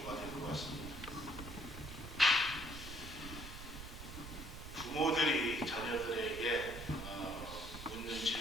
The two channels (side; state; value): right; noise; rumble, 11 dB below the sound